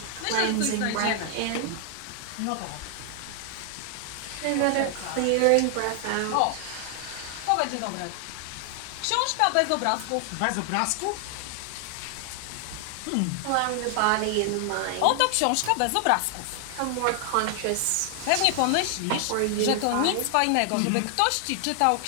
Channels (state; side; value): different; both; correlation 0.00